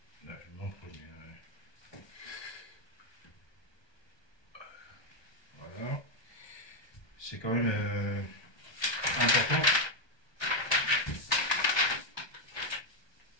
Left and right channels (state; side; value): late; right; 1.2 ms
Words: Là, je vous montre bien. Voilà. C'est quand même important.